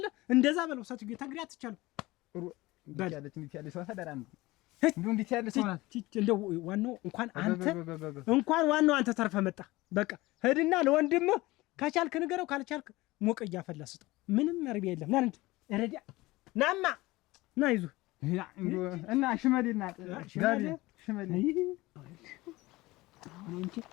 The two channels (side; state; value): right; quieter; 19.9 dB